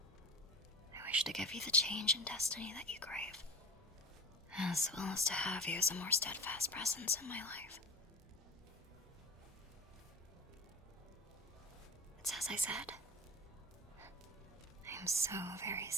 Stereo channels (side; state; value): both; normal; correlation 0.33